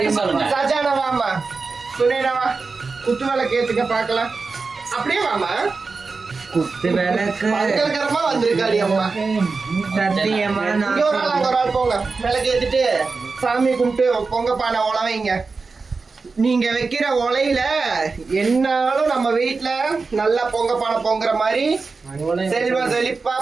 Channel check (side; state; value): left; quieter; 4.3 dB